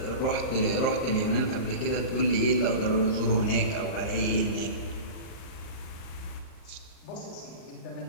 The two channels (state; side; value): late; right; 38 ms